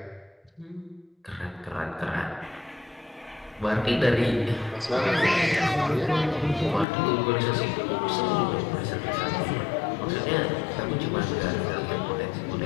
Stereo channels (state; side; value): drops out; right; at 6.9 s